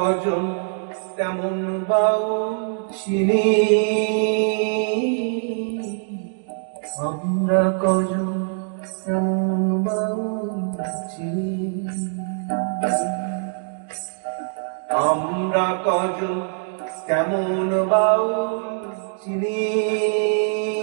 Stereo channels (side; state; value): left; silent; digital silence